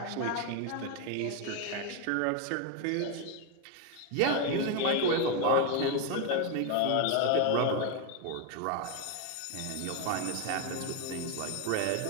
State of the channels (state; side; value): different; both; correlation 0.01